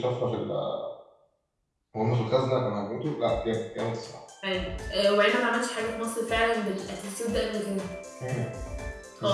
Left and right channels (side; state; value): both; identical; correlation 1.00